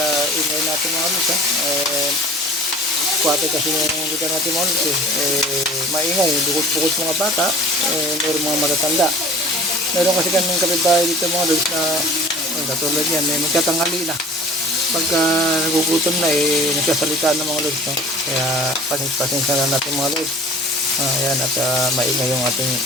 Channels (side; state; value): both; normal; correlation 0.45